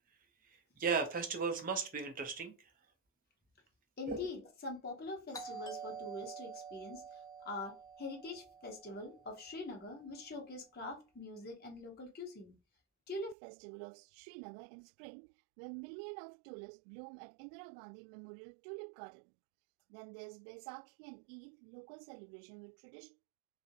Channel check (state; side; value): drops out; left; at 13.4 s